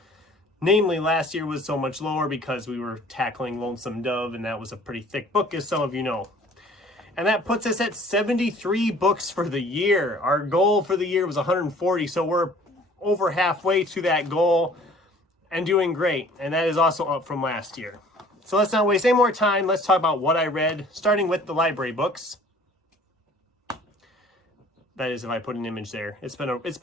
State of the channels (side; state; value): both; normal; correlation 0.52